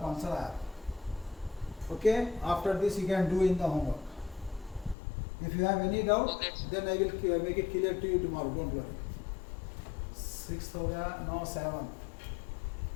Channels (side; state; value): right; drops out; at 5.0 s